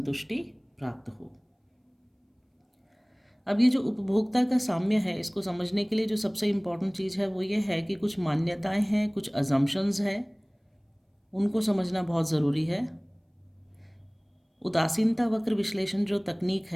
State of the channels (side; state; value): both; identical; correlation 1.00